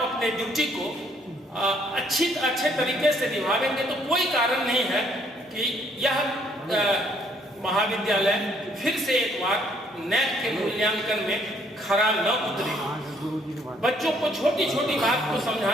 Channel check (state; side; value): normal; both; correlation 0.66